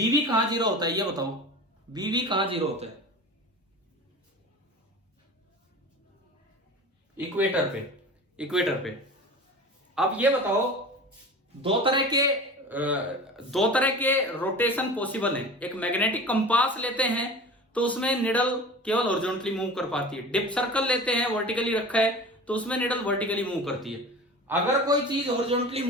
कहां 0 होता है ये बताओ? BB कहां 0 होता है? इक्वेटर पे, इक्वेटर पे। अब ये बताओ, दो तरह के रोटेशन पॉसिबल है। एक मैग्नेटिक कंपास लेते हैं तो उसमें निडल केवल हॉरिजॉन्टली मूव कर पाती है। डिप सर्कल लेते हैं, वर्टिकली रखा है, तो उसमें निडल वर्टिकली मूव करती है। अगर कोई चीज हॉरिजॉन्टली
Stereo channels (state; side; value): normal; both; correlation 0.36